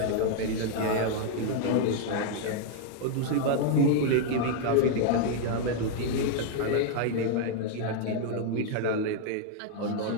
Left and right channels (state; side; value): different; both; correlation 0.00